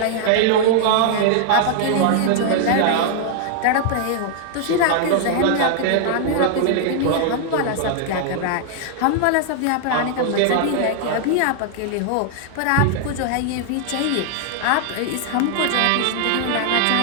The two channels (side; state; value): both; different; correlation 0.00